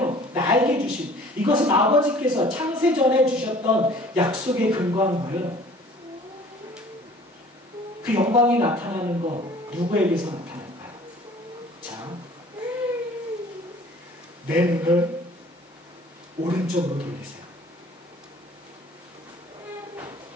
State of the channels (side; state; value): both; normal; correlation 0.50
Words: 나에게 주신, 이것은 아버지께서 창세전에 주셨던 약속에 근거한 거예요. 그 영광이 나타나는 거 누구에게서 나타날까요? 자, 내 눈을 오른쪽으로 돌리세요.